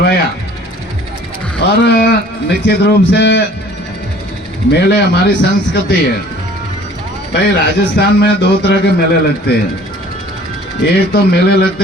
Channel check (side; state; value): both; normal; correlation 0.51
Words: और निश्चित रूप से मेले हमारी संस्कृति है। भाई राजस्थान में 2 तरह के मेले लगते हैं, एक तो मेले